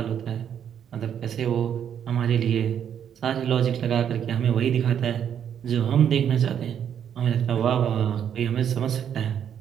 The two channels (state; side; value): quieter; left; 8.8 dB